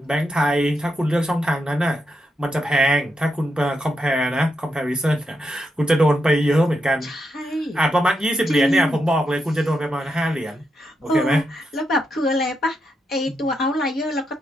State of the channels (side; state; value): both; normal; correlation 0.83